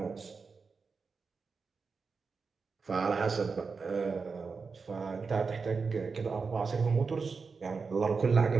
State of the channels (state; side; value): quieter; left; 4.9 dB